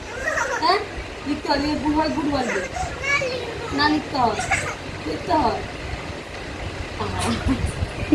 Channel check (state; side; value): identical; both; correlation 1.00